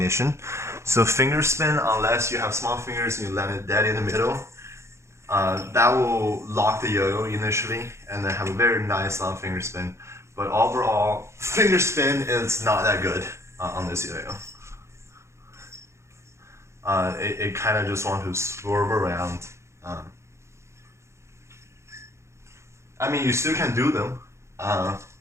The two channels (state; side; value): late; left; 0.13 ms